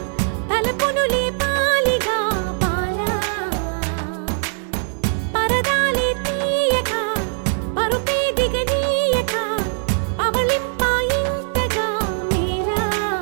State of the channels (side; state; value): left; silent; 65 dB below the other